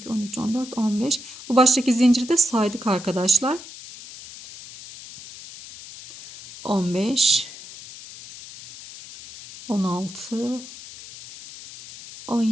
13, 14, 15. Bu baştaki zinciri de saydık arkadaşlar. 15, 16,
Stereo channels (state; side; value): noise; left; hiss, 15 dB below the sound